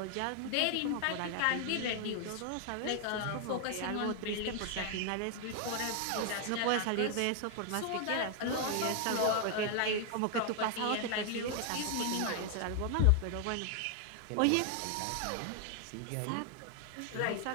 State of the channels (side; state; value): both; different; correlation 0.00